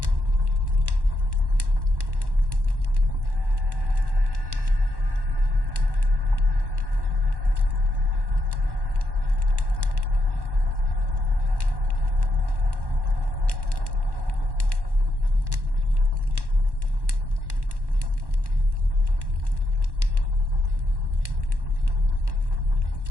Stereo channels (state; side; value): late; left; 1.1 ms